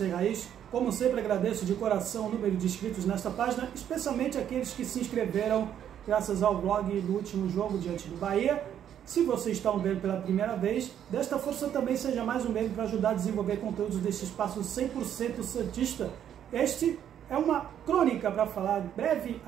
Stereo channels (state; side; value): quieter; left; 9.8 dB